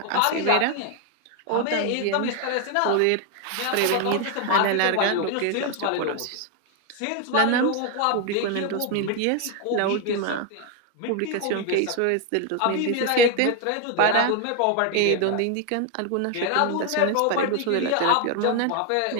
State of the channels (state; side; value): different; both; correlation 0.01